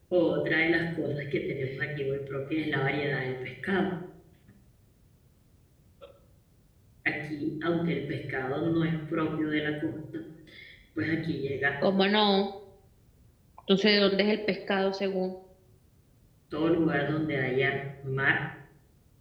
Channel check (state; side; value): identical; both; correlation 1.00